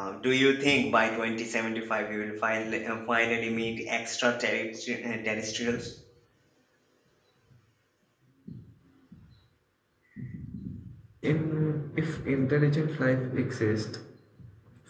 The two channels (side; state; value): both; identical; correlation 1.00